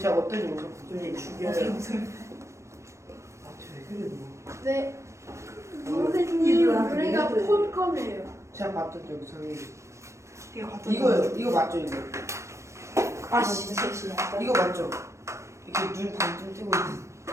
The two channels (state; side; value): late; left; 0.14 ms